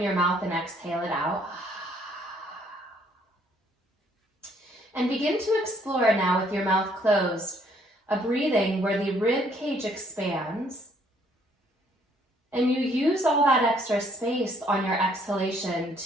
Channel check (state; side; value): normal; both; correlation 0.65